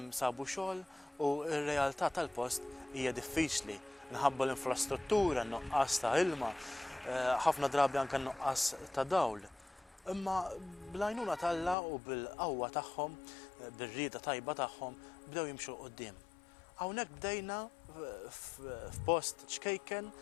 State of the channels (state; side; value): drops out; right; at 11.8 s